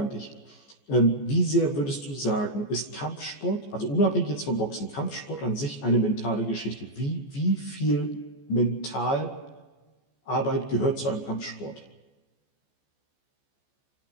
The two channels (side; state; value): right; late; 14 ms